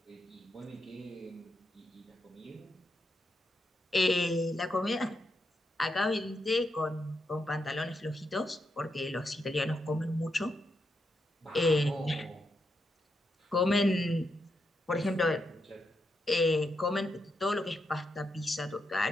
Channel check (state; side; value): normal; both; correlation 0.83